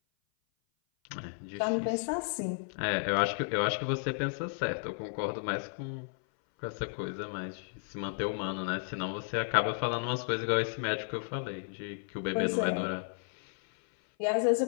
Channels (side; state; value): right; silent; 56 dB below the other